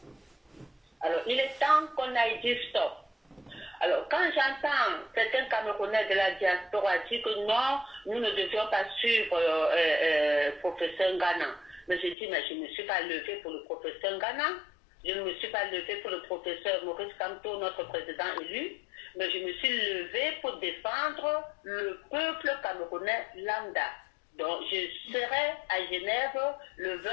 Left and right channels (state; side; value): drops out; right; at 12.2 s